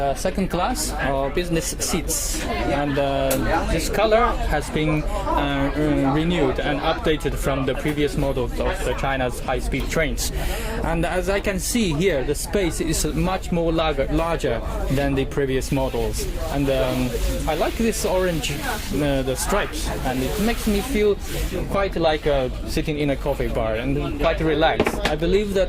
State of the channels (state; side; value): identical; both; correlation 1.00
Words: second class or business seats, and this color has been renewed and updated from the previous models of the China's high-speed trains. And as I can see here, the space is much more larger than the previous models. And I like this orange, the stripes, and it makes me feel quite like sitting in a coffee bar and quite relaxed. I believe